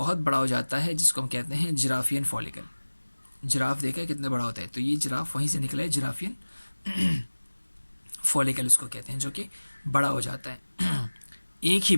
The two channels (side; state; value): both; inverted; correlation -1.00